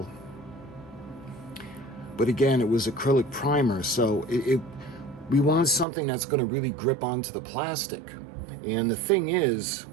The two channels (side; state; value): left; drops out; at 5.9 s